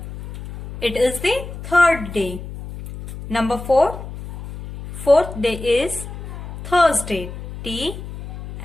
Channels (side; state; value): left; noise; hum, 11 dB below the sound